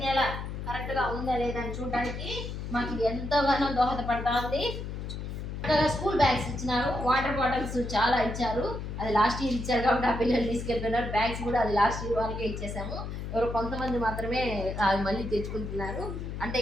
నెల కరెక్ట్గా ఉందా లేదా అని చూడడానికి మాకు ఇది ఎంతగానో దోహదపడతా ఉంది. స్కూల్ బ్యాగ్స్ ఇచ్చినారు. వాటర్ బాటిల్స్ చాలా ఇచ్చారు. అది లాస్ట్ ఇయర్ ఇచ్చారు కాబట్టి ఆ పిల్లలు తీసుకెళ్ళిపోయినారు. బ్యాగ్స్ కూడా అది లాస్ట్ ఇయర్ వాళ్ళకే ఇచ్చేసాము. ఎవరు కొంతమంది మాత్రమే అది మళ్ళీ తెచ్చుకుంటున్నారు. అంటే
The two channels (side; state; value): left; noise; hum, 6 dB below the sound